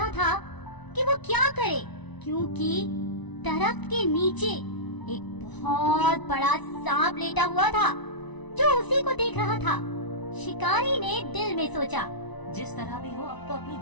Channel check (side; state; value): right; late; 1.0 ms